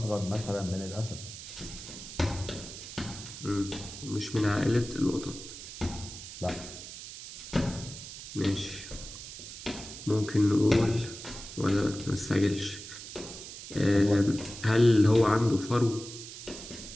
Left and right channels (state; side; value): noise; right; hiss, 12 dB below the sound